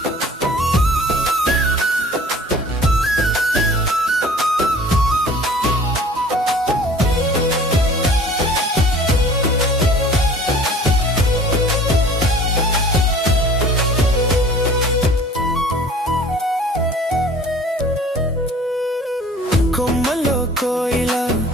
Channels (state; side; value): normal; both; correlation 0.48